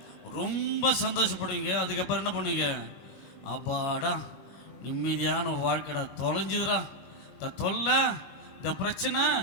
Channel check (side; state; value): right; late; 22 ms